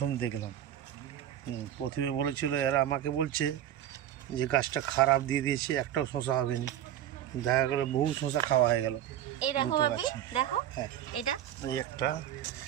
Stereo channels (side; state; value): left; quieter; 11.2 dB